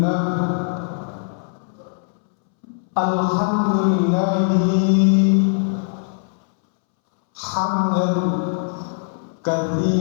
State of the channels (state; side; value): silent; right; 65 dB below the other